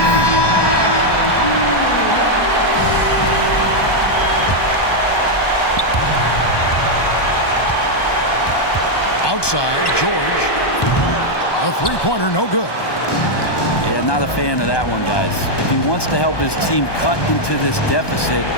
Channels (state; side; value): late; right; 1.2 ms